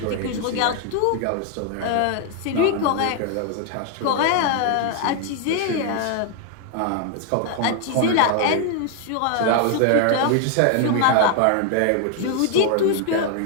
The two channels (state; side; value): different; both; correlation 0.00